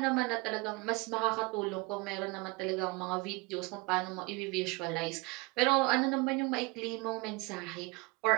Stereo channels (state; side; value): quieter; left; 25.8 dB